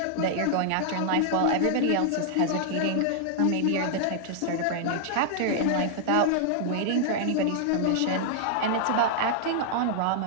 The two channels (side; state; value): both; different; correlation -0.01